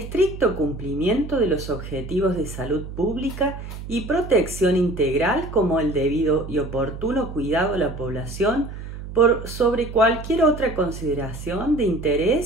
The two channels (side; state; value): right; noise; hum, 10 dB below the sound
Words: cumplimiento de los objetivos de salud pública y protección integral como el debido y oportuno cuidado a la población por sobre cualquier otra consideración de